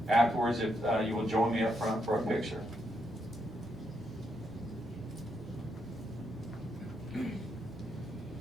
afterwards, if you will join me up front for a picture.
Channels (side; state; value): both; normal; correlation 0.79